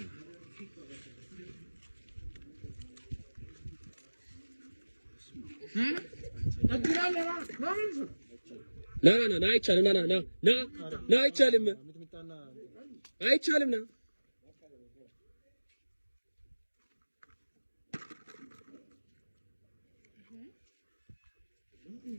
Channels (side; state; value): both; inverted; correlation -1.00